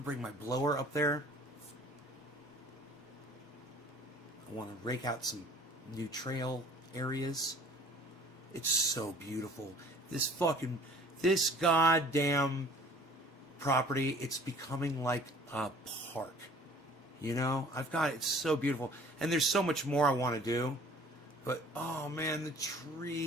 bring my blower up there. I want to rake out some new trail areas. It's so beautiful. This goddamn property, it's becoming like a park. It's so beautiful. And there's so much more I want to do. But, oh man, the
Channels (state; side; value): normal; both; correlation 0.51